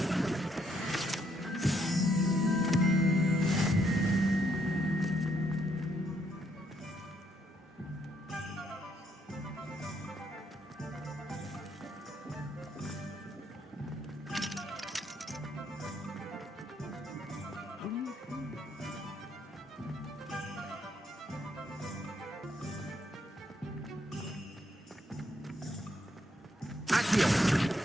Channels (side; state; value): both; normal; correlation 0.73